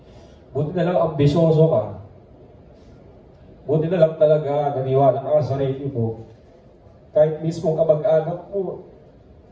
Buti na lang ambisyoso ka. Buti na lang talaga naniwala ka sa sarili mo. Kahit mismo kamag-anak mo,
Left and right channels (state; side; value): identical; both; correlation 1.00